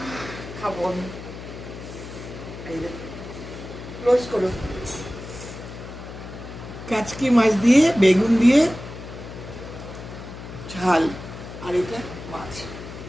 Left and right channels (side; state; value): left; noise; hum, 12 dB below the sound